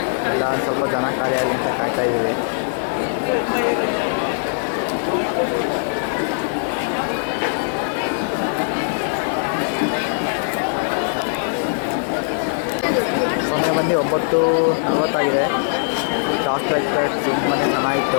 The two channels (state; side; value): silent; right; 56 dB below the other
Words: ಎಲ್ಲ ಸ್ವಲ್ಪ ಜನ ಕಾರ್ಯಾಲಯ ಅಂತ ಕಾಯ್ತಾ ಇದ್ದೀವಿ. ಸಮಯ ಬಂದು 9:40 ಟಾಸ್ ಲೈಟ್ ಪರೇಡ್ ತುಂಬಾ